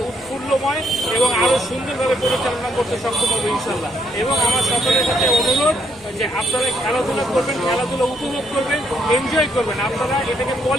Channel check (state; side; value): noise; right; hum, 28 dB below the sound